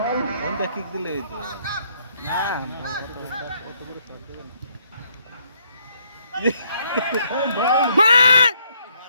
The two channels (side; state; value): both; inverted; correlation -0.70